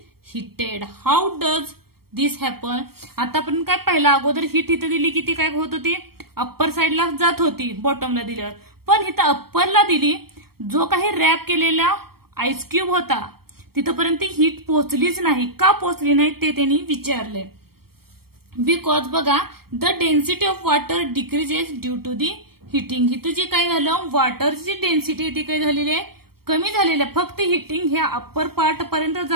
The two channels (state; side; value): late; left; 0.94 ms